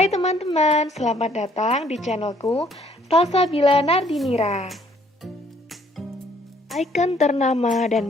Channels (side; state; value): both; normal; correlation 0.63